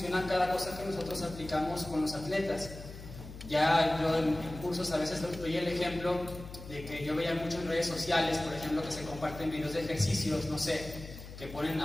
cada cosa que nosotros aplicamos con los atletas. Ya yo en cursos a veces doy el ejemplo de que yo veía mucho en redes sociales, por ejemplo, que se comparten videos de ejercicios, no sé, que ponen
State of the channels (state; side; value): noise; left; hum, 13 dB below the sound